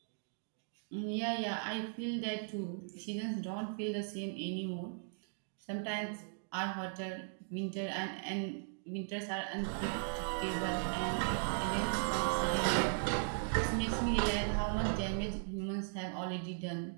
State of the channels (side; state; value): left; silent; digital silence